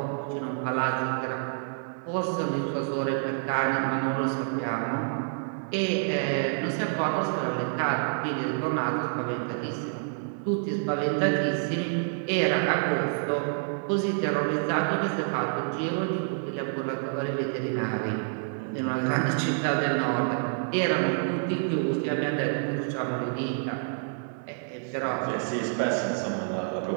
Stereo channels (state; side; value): silent; left; 58 dB below the other